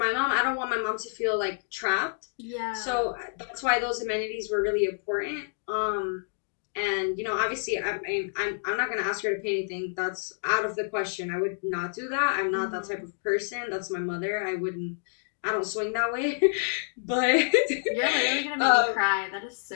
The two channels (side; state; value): right; silent; digital silence